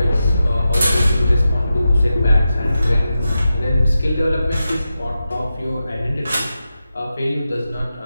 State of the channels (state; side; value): inverted; both; correlation -0.90